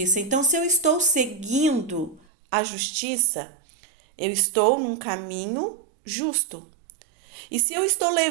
Então, se eu estou seguindo a justiça, eu estou num caminho justo. E se eu estou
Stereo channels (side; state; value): left; drops out; at 2.2 s